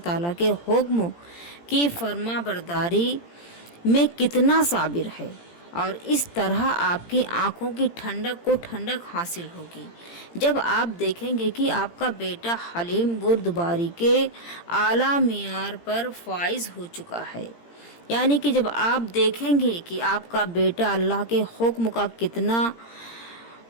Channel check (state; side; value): late; right; 17 ms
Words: تعالیٰ کے حکم کی فرما برداری میں کتنا صابر ہے، اور اس طرح آپ کی آنکھوں کی ٹھنڈک کو ٹھنڈک حاصل ہوگی جب آپ دیکھیں گے کہ آپ کا بیٹا حلیم بردباری کے اعلیٰ معیار پر فائز ہو چکا ہے۔ یعنی کہ جب آپ دیکھیں گے کہ آپ کا بیٹا اللہ کے حکم کا کتنا